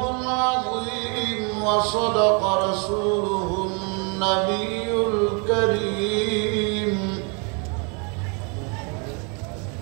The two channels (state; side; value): quieter; left; 35.1 dB